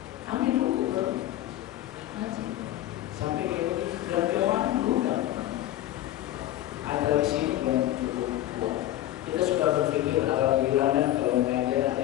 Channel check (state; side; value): quieter; right; 13.9 dB